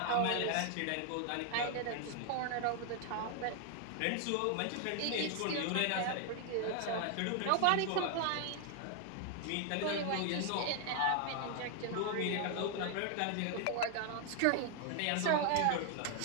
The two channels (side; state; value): both; different; correlation 0.00